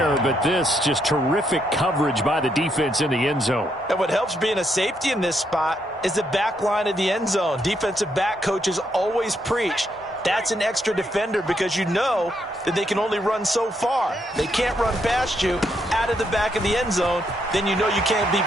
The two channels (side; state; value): both; normal; correlation 0.77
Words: but this just terrific coverage by the defense in the end zone. And what helps being a safety in this spot is the back line of the end zone. Defensive back coaches always preach. That's an extra defender because you know that they can only run so far. They can't run past you out of the back of the end zone. Then you know you can't be